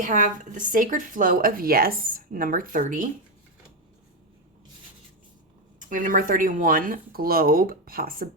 have the Sacred Flow of Yes, number 30. We have number 31, Globe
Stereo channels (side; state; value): both; normal; correlation 0.08